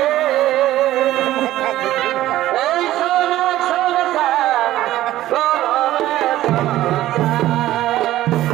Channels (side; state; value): left; quieter; 14.6 dB